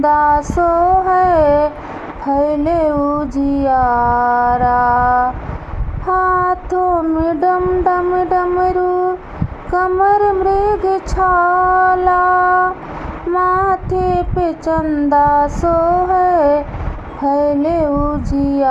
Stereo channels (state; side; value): identical; both; correlation 1.00